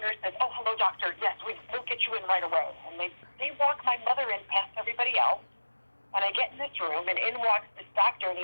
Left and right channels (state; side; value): inverted; both; correlation -1.00